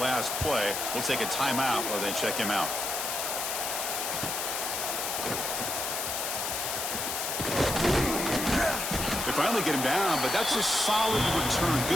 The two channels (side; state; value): left; noise; hiss, 2 dB below the sound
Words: play. We'll take a timeout while they check him out. They finally get him down, but that's a solid return.